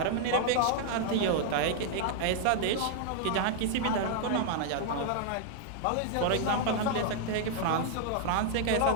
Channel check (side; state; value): both; different; correlation -0.01